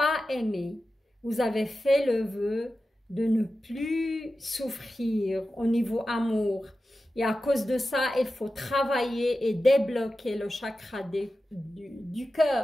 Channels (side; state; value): both; normal; correlation 0.93